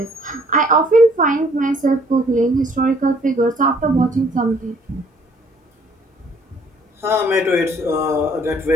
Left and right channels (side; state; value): both; normal; correlation 0.60